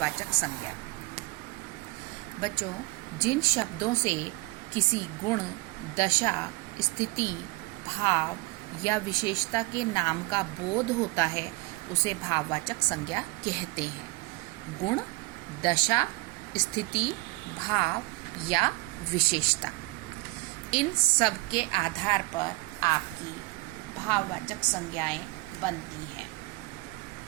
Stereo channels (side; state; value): left; quieter; 23.9 dB